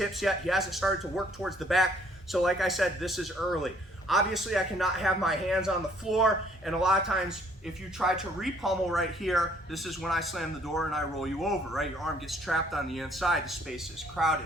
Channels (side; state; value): both; normal; correlation 0.62